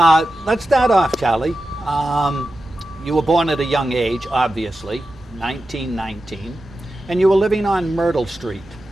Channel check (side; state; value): both; normal; correlation 0.92